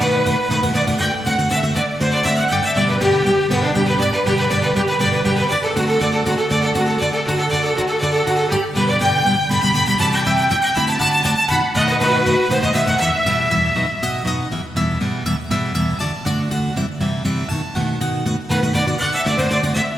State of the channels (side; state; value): both; normal; correlation 0.87